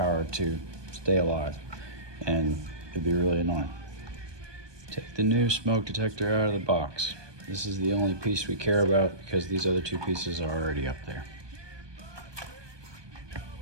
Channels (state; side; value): late; left; 1.2 ms